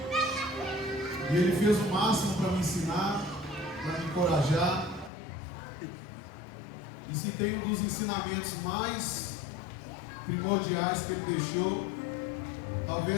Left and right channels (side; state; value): right; drops out; at 5.1 s